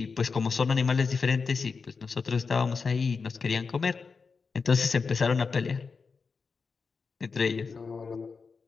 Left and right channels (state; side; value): quieter; right; 5.0 dB